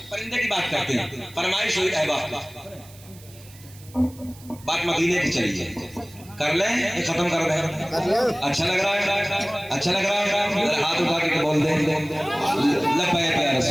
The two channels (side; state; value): right; noise; hiss, 22 dB below the sound